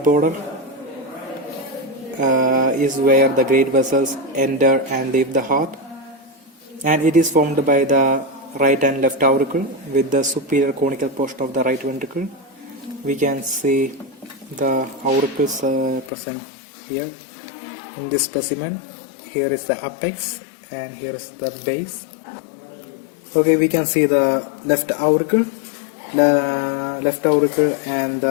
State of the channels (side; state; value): right; drops out; at 16.1 s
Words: is where the great vessels enter and leave the heart, and it is formed by the right and left auricle with the superior conical portion of the right ventricle. We can see the auricles present here in this specimen. Here is the apex and here is the base. Okay, we can see the left auricle and